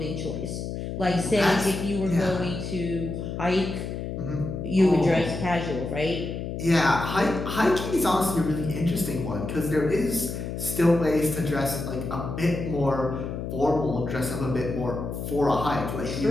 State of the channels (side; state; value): left; noise; hum, 5 dB below the sound